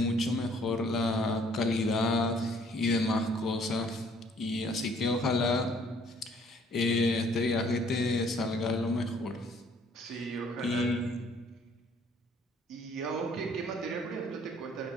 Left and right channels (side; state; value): both; normal; correlation 0.60